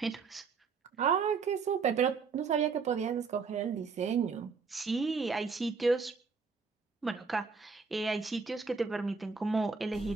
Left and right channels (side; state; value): left; quieter; 5.1 dB